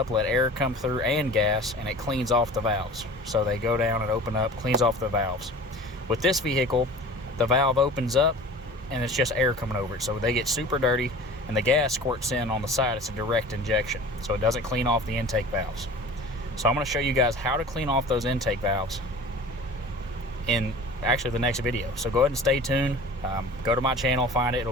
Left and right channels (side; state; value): both; normal; correlation 0.40